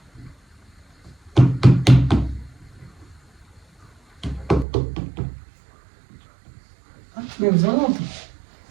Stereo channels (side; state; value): left; drops out; at 4.7 s